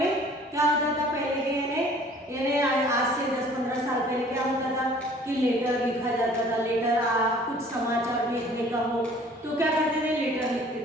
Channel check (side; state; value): both; normal; correlation 0.52